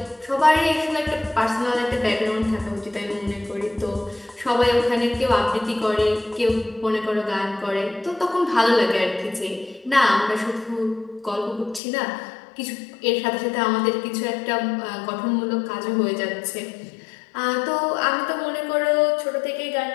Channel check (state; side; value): drops out; right; at 11.8 s